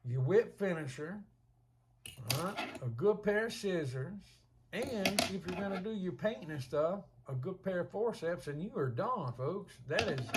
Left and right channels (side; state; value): both; identical; correlation 1.00